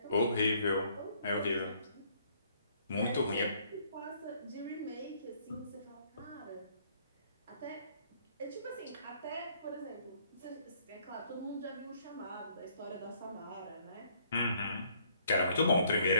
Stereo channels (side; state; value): both; inverted; correlation -0.65